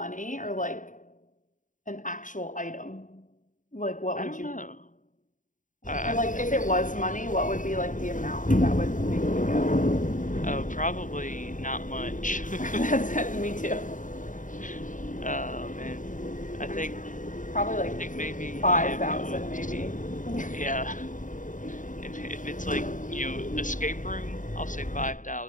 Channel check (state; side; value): late; right; 0.38 ms